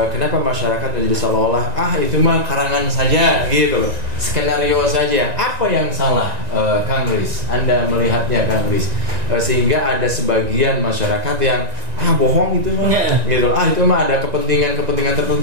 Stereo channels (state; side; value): late; left; 2.0 ms